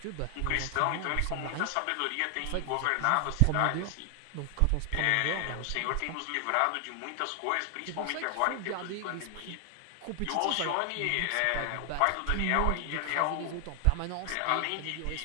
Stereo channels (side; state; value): both; different; correlation 0.00